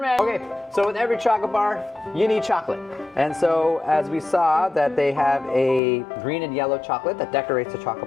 Okay, so with every chocolate bar, you need chocolate. And so, as we saw, that they have a green and yellow chocolate that decorates the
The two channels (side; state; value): right; drops out; at 5.8 s